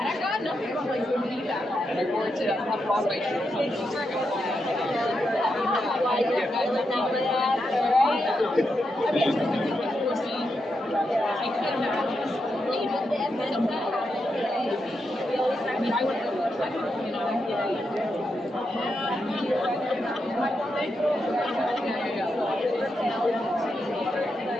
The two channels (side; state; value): both; normal; correlation 0.84